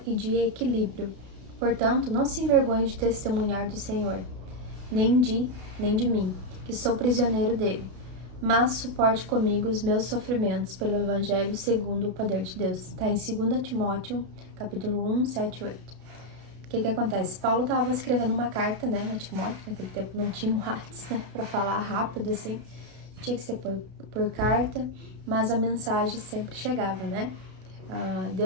e de equilíbrio. Portanto, não se envergonhe de testemunhar do Senhor, nem de mim, que sou prisioneiro dele. Mas suporte comigo os meus sofrimentos pelo Evangelho segundo o poder de Deus. Está em 2 Timóteo, capítulo 1, 7 e 8. O que acontece? Paulo estava escrevendo uma carta, né, a Timóteo. Naquele tempo não tinha um WhatsApp, né, para falar rápido assim. Tinha que ser por carta, mas a mensagem sempre chegava, né?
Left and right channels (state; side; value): late; left; 32 ms